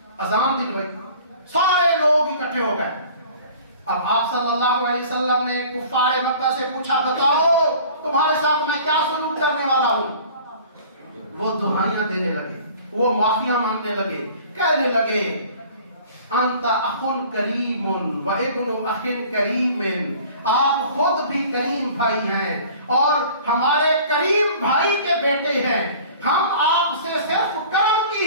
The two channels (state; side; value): inverted; both; correlation -0.47